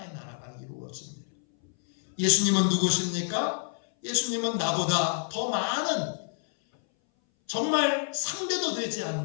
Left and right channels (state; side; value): silent; right; 59 dB below the other